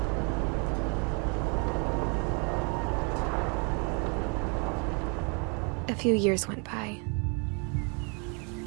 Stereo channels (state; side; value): quieter; left; 35.4 dB